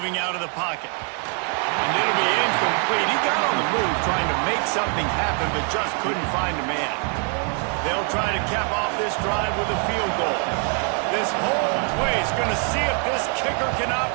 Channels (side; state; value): left; quieter; 38.8 dB